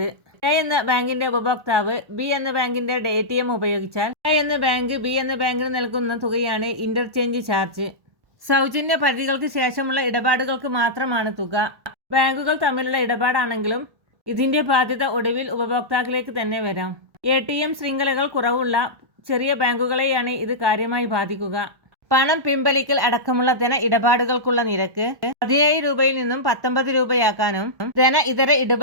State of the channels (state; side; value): late; left; 1.3 ms